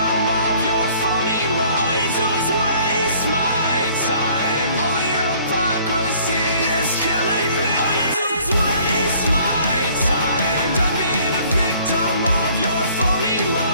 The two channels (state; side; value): inverted; both; correlation -0.57